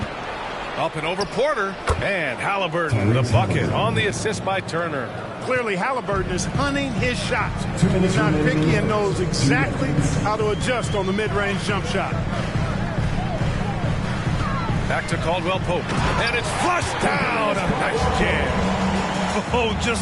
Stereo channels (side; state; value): both; identical; correlation 1.00